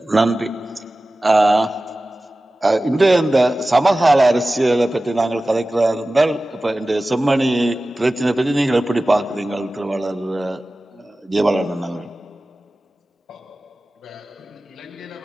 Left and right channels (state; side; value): normal; both; correlation 0.96